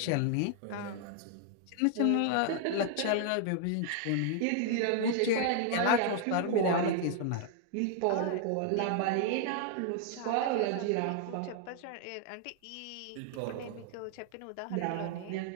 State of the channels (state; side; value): different; both; correlation 0.00